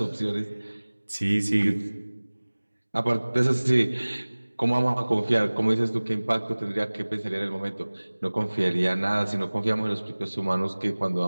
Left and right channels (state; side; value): inverted; both; correlation -1.00